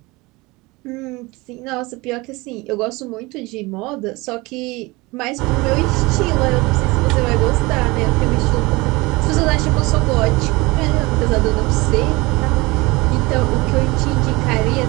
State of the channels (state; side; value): quieter; left; 23.2 dB